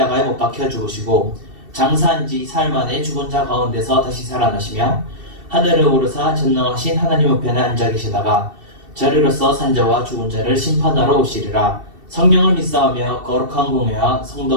못 박혀 죽으시고 장사한 지 사흘 만에 죽은 자 가운데서 다시 살아나시며 하늘에 오르사 전능하신 하나님 우편에 앉아 계시다가 저리로서 산자와 죽은 자를 심판하러 오시리라. 성령을 믿사오며 거룩한 공회와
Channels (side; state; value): left; late; 2.7 ms